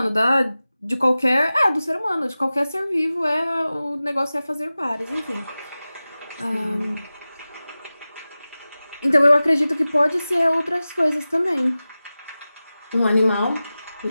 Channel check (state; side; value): inverted; both; correlation -0.96